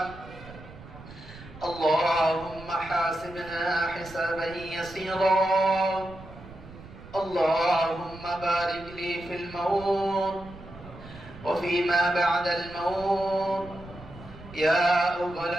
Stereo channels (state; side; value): noise; right; rumble, 17 dB below the sound